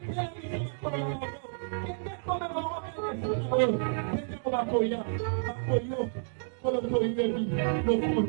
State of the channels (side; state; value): left; silent; digital silence